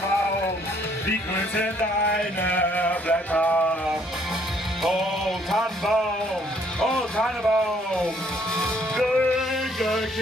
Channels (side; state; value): both; normal; correlation 0.64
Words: wie grün sind deine Blätter. Oh Tannenbaum,